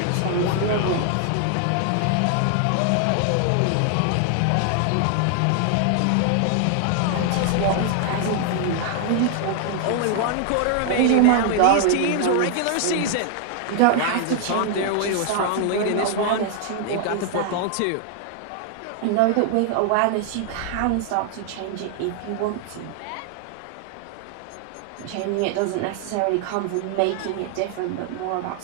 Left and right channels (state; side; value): different; both; correlation 0.00